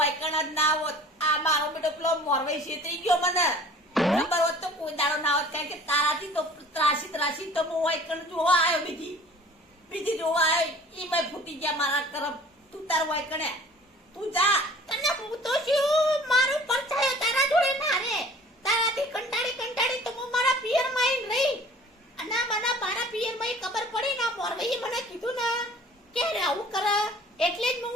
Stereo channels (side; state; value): both; normal; correlation 0.48